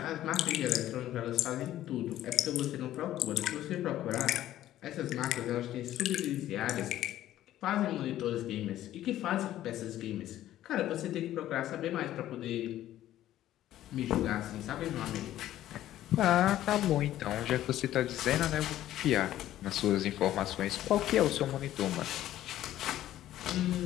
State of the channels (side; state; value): right; quieter; 13.2 dB